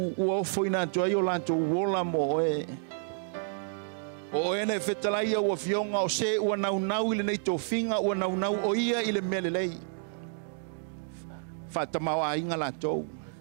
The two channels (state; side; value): silent; left; digital silence